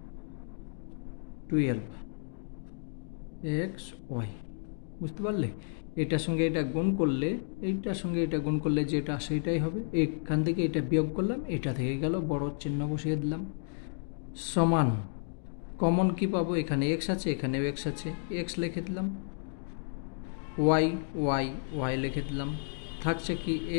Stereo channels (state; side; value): silent; right; digital silence